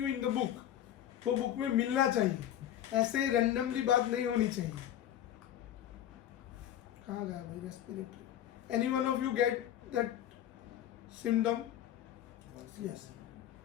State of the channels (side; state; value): right; quieter; 11.2 dB